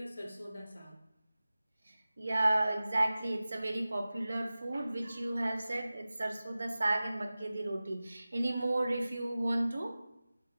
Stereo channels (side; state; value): both; inverted; correlation -0.97